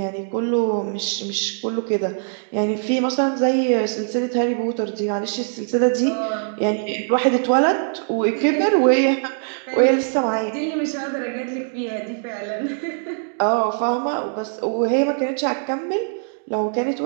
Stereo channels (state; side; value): silent; left; digital silence